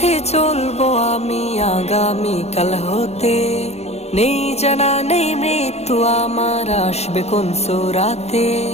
চলবো আমি আগামীকাল হতে, নেই জানা নেই মৃত্যু আমার আসবে কোন সুরাতে।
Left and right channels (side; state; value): right; late; 0.31 ms